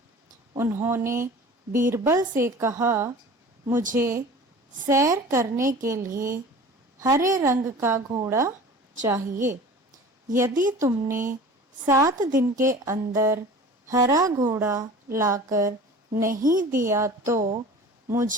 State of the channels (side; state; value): both; normal; correlation 0.40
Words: उन्होंने बीरबल से कहा, मुझे सैर करने के लिए हरे रंग का घोड़ा चाहिए। यदि तुमने 7 दिन के अंदर हरा घोड़ा लाकर नहीं दिया तो